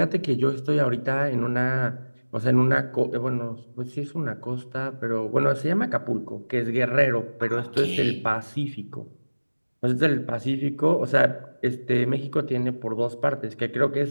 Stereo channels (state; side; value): inverted; both; correlation -1.00